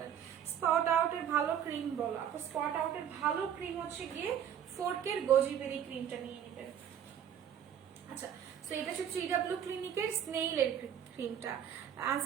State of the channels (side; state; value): left; quieter; 9.2 dB